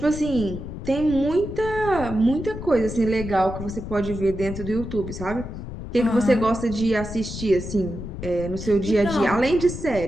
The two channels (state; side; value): noise; left; rumble, 9 dB below the sound